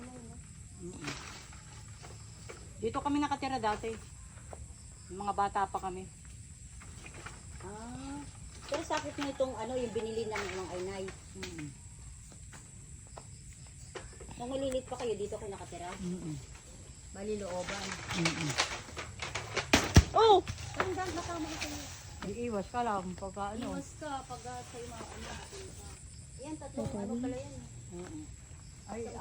Dito kami nakatira dati. Yung mga bata pa kami. Ah. Pero sakit mo itong ano, yung binili ng mga inay. Nung malilit pa kayo, dito kayo nakatira? Bali looban. Oh! Parang dahil nakama ka kayo. Iiwas ka lang pagka ano. Iwas ka pag sa'yo mga ano. Yan, tatlong ano pala yan. Ay,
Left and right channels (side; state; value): both; identical; correlation 1.00